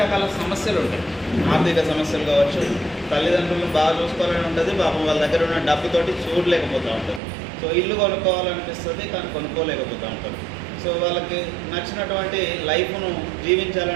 రకాల సమస్యలు ఉంటాయి. ఆర్థిక సమస్యలు కావచ్చు, తల్లిదండ్రులను బాగా చూసుకోవాలని ఉంటుంది, పాపం వాళ్ళ దగ్గర ఉన్న డబ్బుతోటి చూడలేకపోతూ ఉంటారు. సో ఇల్లు కొనుక్కోవాలనిపిస్తుంది కానీ కొనుక్కోలేకపోతూ ఉంటారు. సో వాళ్ళకి నచ్చినటువంటి లైఫ్ను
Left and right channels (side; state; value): left; drops out; at 7.2 s